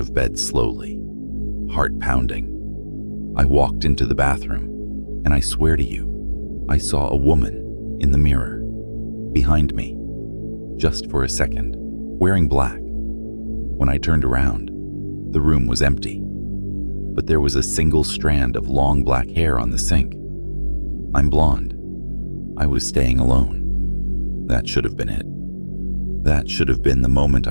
bed slowly, heart pounding. I walked into the bathroom, and I swear to you, I saw a woman in the mirror, behind me, just for a second, wearing black. When I turned around, the room was empty, but there was a single strand of long black hair on the sink. I'm blonde. I was staying alone. That should have been it. That should have been the moment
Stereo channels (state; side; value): inverted; both; correlation -1.00